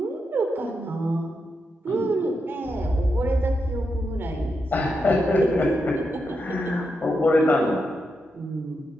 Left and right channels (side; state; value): both; normal; correlation 0.85